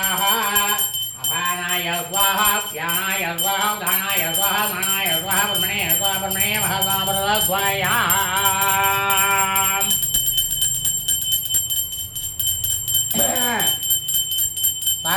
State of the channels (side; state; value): both; identical; correlation 1.00